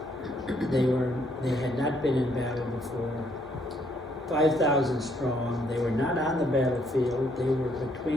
They had not been in battle before. 5,000 strong. They were not on the battlefield. They were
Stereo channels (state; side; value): normal; both; correlation 0.69